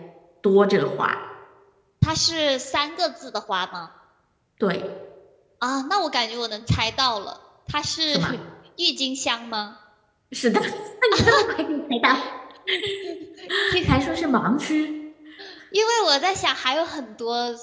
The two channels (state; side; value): identical; both; correlation 1.00